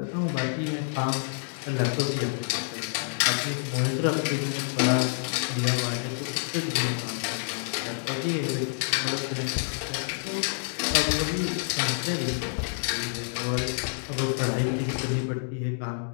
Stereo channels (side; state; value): right; silent; digital silence